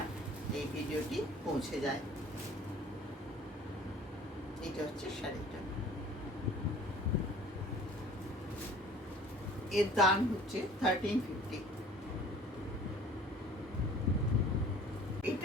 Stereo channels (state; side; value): normal; both; correlation 0.49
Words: এই ভিডিওটি পৌঁছে যায়। এটা হচ্ছে শাড়িটা, এর দাম হচ্ছে 1350।